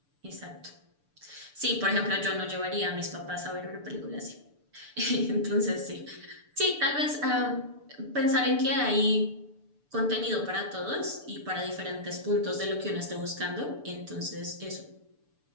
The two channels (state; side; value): late; left; 6.9 ms